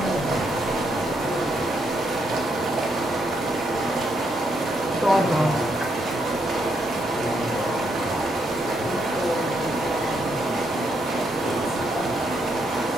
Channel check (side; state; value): both; normal; correlation 0.77